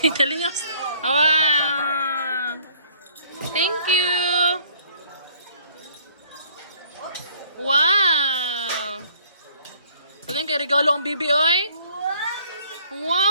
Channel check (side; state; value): both; inverted; correlation -0.57